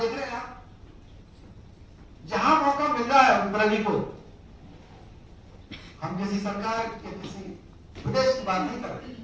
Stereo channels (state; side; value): identical; both; correlation 1.00